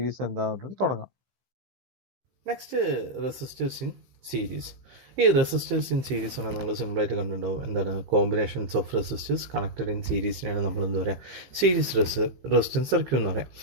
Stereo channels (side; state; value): left; late; 15 ms